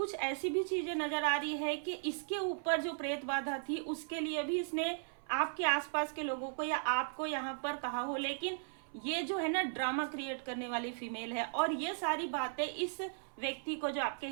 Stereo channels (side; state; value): left; silent; 53 dB below the other